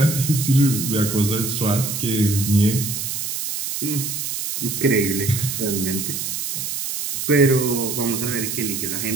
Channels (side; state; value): right; noise; hiss, 4 dB below the sound